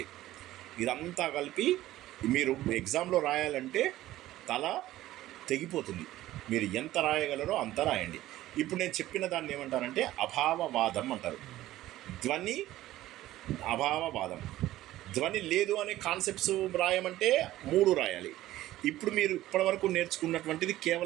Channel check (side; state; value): left; quieter; 15.2 dB